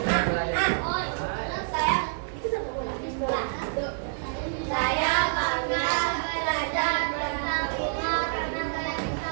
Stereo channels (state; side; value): silent; left; digital silence